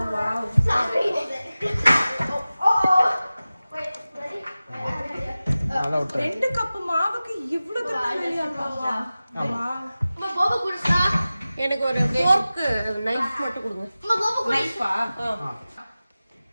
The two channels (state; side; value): inverted; both; correlation -0.96